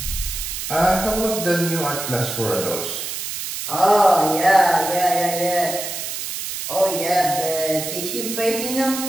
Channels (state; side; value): noise; right; hiss, 6 dB below the sound